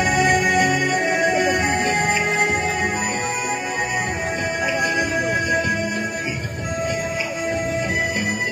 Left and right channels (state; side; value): identical; both; correlation 1.00